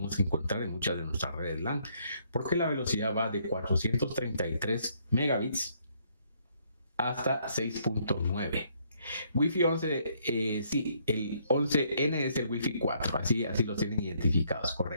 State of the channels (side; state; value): both; inverted; correlation -0.69